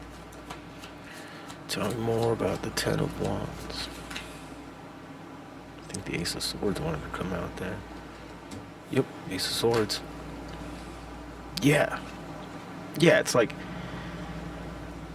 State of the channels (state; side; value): identical; both; correlation 1.00